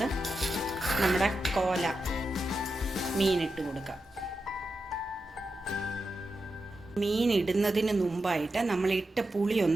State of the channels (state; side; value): normal; both; correlation 0.89